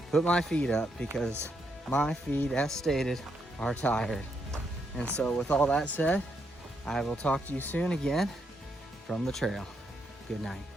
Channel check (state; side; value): normal; both; correlation 0.78